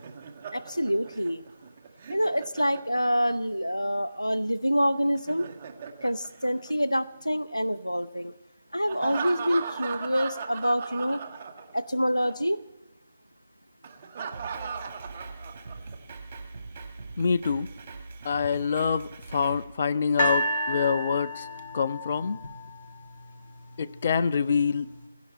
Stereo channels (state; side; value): inverted; both; correlation -0.88